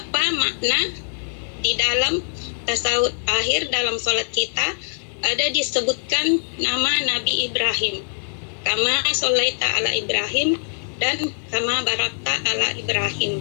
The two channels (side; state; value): right; silent; digital silence